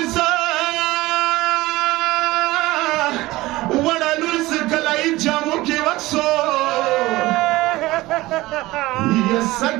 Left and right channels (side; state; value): left; quieter; 18.9 dB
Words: لور زه کله یې جامو کې وکسو یا